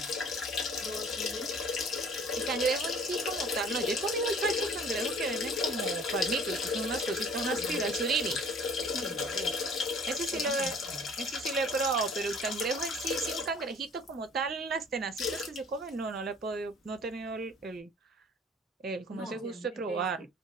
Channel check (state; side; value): normal; both; correlation 0.51